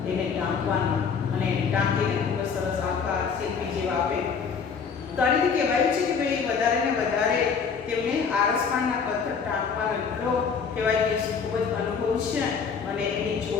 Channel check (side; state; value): right; quieter; 6.0 dB